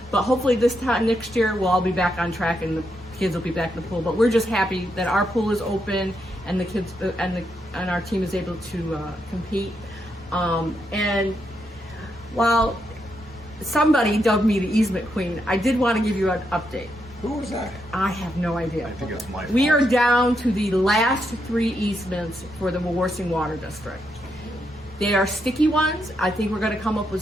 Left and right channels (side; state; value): both; normal; correlation 0.81